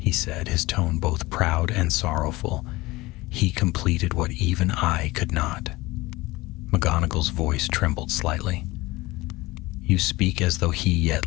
said, his tone both proud and sorrowful. "He completed what even I could not." McGonagall's voice trembled slightly. "You speak as though he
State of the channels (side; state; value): right; quieter; 20.4 dB